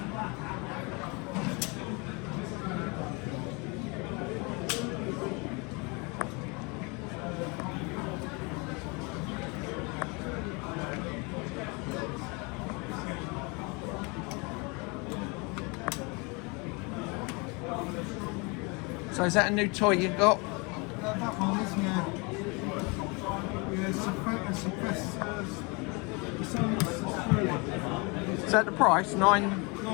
So is that a new toy you got? That one is, yeah. Is that the price? $9.50.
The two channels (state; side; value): quieter; right; 29.5 dB